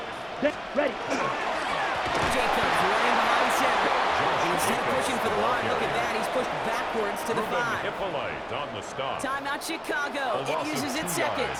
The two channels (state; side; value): identical; both; correlation 1.00